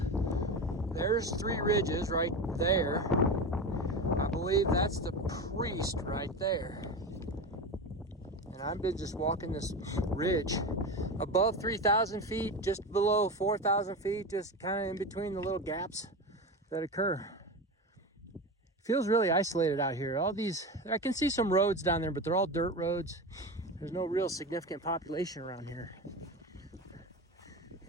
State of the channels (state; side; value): normal; both; correlation 0.23